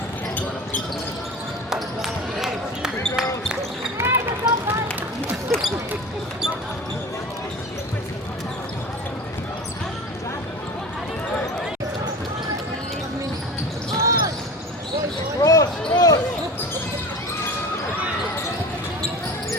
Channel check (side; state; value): both; normal; correlation 0.34